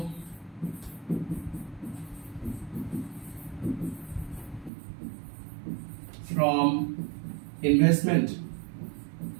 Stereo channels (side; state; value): left; drops out; at 4.7 s